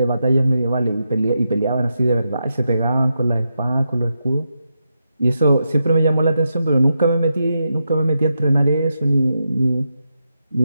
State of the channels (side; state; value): both; inverted; correlation -0.86